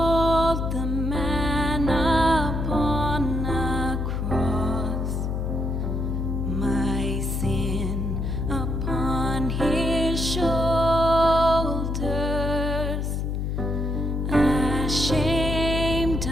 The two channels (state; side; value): noise; left; hum, 1 dB below the sound